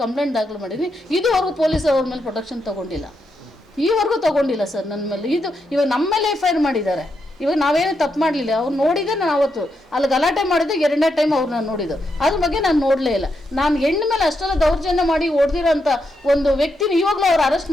ಕಂಪ್ಲೇಂಟ್ ದಾಖಲು ಮಾಡಿದ್ದೀನಿ. ಇದುವರೆಗೂ ಪೊಲೀಸ್ ಅವ್ರ ಮೇಲೆ ಪ್ರೊಟೆಕ್ಷನ್ ತೊಗೊಂಡಿಲ್ಲ, ಈವರೆಗೂ ತೊಗೊಂಡಿಲ್ಲ ಸರ್ ನನ್ನ ಮೇಲೆ. ಇವಾಗ ನಮ್ಮ ಮೇಲೆ FIR ಮಾಡಿದ್ದಾರೆ. ಇವಾಗ ನಾವೇನು ತಪ್ಪು ಮಾಡಲಿಲ್ಲ, ಅವ್ರು ನೋಡಿದೆ. ನಾನು ಅವತ್ತು ಅಲ್ಲಿ ಗಲಾಟೆ ಮಾಡಿದೆ, 2ನೇ ಟೈಮ್ ಅವ್ರನ್ನ ನೋಡಿದ್ದು, ಅದ್ರ ಬಗ್ಗೆ ನಾನು ನೋಡಲೇ ಇಲ್ಲ. ನಾನು ಹೆಣ್ಣು ಮೇಲೆ ಅಷ್ಟೆಲ್ಲ ದೌರ್ಜನ್ಯ ಮಾಡಿ ಹೊಡೆದಿರೋಂಥ ಒಂದು ವ್ಯಕ್ತಿನ ಇವಾಗಲೂ ಅವ್ರು ಅರೆಸ್ಟ್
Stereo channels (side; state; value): both; normal; correlation 0.82